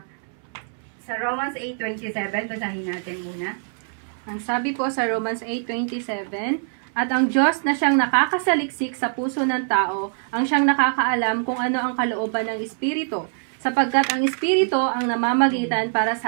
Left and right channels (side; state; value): left; silent; 63 dB below the other